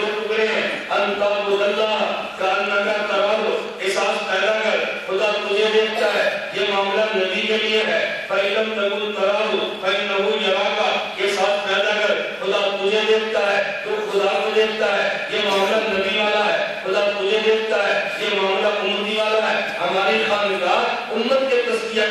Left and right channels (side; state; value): both; identical; correlation 1.00